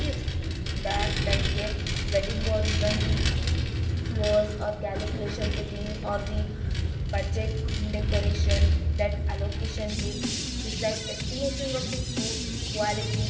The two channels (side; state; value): both; identical; correlation 1.00